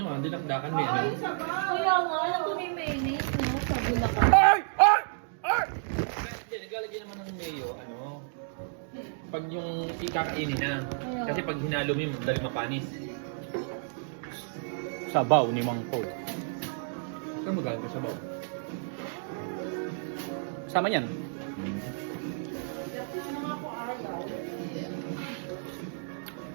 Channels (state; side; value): silent; left; digital silence